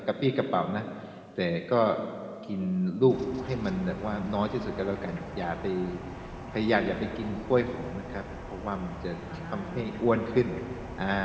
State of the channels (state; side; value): identical; both; correlation 1.00